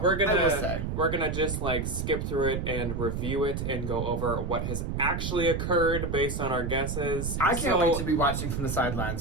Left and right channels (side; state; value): right; noise; rumble, 3 dB below the sound